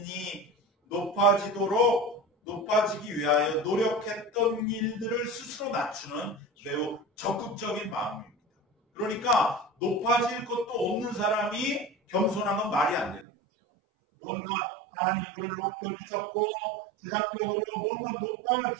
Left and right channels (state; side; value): drops out; left; at 13.2 s